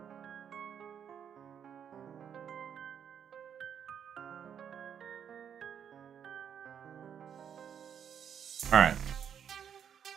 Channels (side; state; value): left; quieter; 8.3 dB